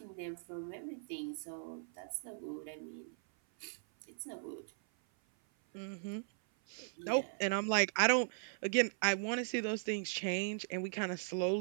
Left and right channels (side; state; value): left; silent; 52 dB below the other